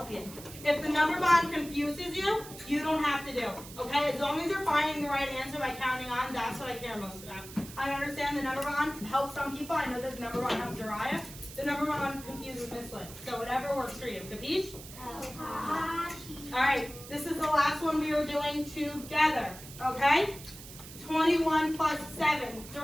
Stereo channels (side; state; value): right; noise; hiss, 15 dB below the sound